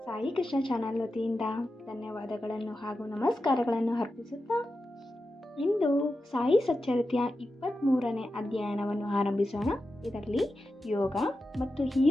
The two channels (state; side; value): normal; both; correlation 0.91